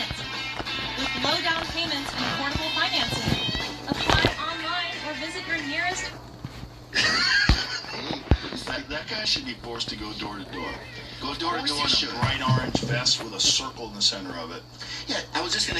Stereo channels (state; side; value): identical; both; correlation 1.00